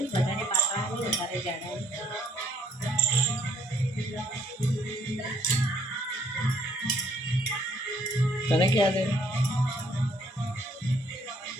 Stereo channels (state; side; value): normal; both; correlation 0.64